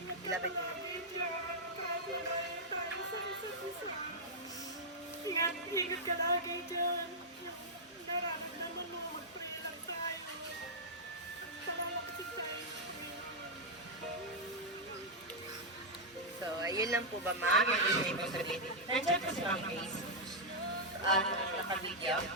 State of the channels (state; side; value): normal; both; correlation -0.05